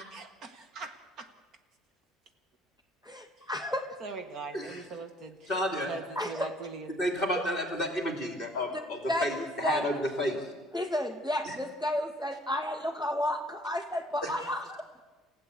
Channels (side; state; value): both; normal; correlation 0.59